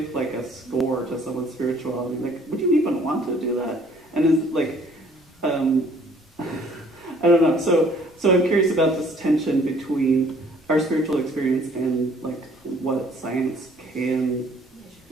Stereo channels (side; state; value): both; normal; correlation 0.58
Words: like a score to someone's spirituality? Like, would you even want to do that? And is like, I don't know. So I'm curious about this tension between our spiritual experience and like what science can,